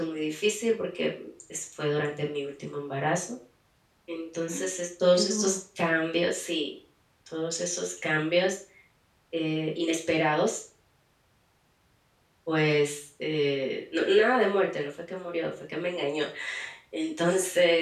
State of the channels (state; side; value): identical; both; correlation 1.00